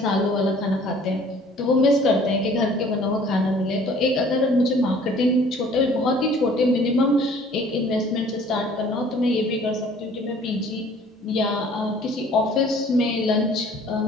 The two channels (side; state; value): both; normal; correlation 0.53